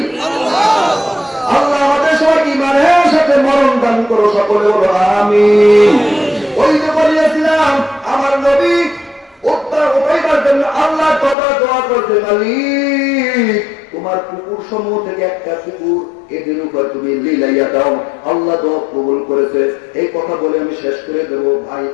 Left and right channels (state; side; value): drops out; right; at 11.4 s